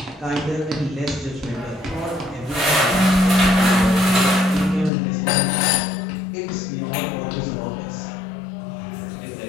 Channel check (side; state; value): right; drops out; at 4.9 s